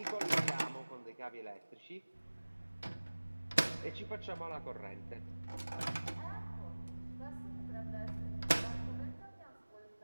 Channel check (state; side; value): inverted; both; correlation -1.00